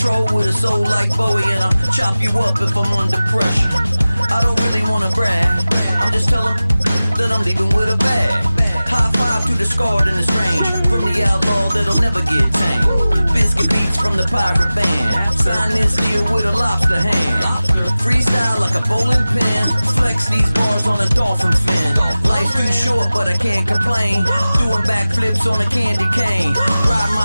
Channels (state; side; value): inverted; both; correlation -0.97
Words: with a soul like Bowie, and I'll chop you up if I'm under pressure. I don't really wanna brag, I'm just telling that I'm leaving with a bag. High five to the scarred and the strange, from the outlaw that'll never get tamed. Biscuit beats from the pirate band, sign this deal with a lobster hand. Freestyle like a bowling pin, flex these bars on a dolphin fin. Life's too short but I can't complain, doing backflips on a candy cane. Ride